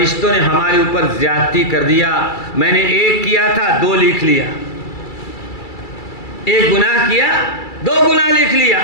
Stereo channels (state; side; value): late; right; 2.3 ms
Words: نے ہمارے اوپر زیادتی کر دیا، میں نے 1 کیا تھا 2 لکھ لیا، 1 گناہ کیا 2 گناہ لکھ لیا۔